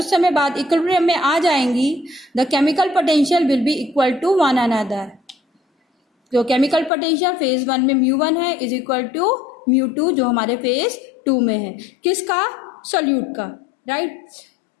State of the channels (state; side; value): drops out; right; at 6.9 s